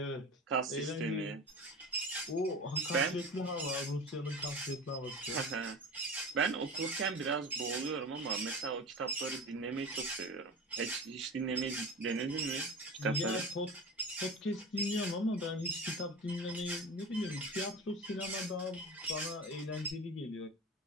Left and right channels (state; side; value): normal; both; correlation 0.31